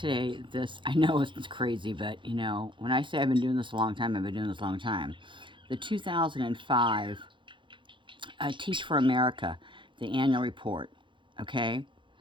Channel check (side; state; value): left; late; 0.24 ms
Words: this. I know it's crazy, but you know, when I say I've been doing this a long time, I've been doing this a long time. The 2005 Teach for America, the annual report. Okay,